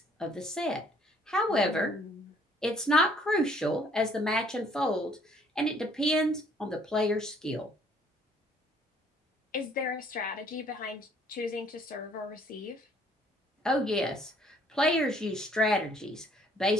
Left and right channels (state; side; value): normal; both; correlation 0.61